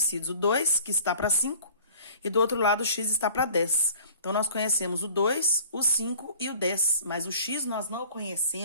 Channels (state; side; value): inverted; both; correlation -0.47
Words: O 2, que está para 5, e do outro lado o x está para 10. Então, nós conhecemos o 2, o 5 e o 10. Mas o x nós não